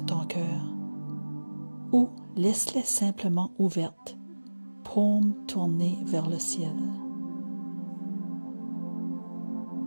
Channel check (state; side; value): inverted; both; correlation -1.00